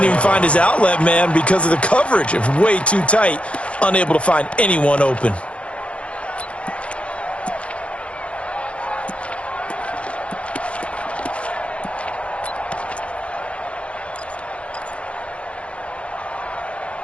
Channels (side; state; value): right; late; 0.061 ms